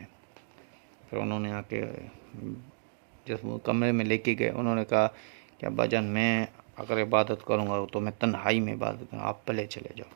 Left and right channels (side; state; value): left; silent; digital silence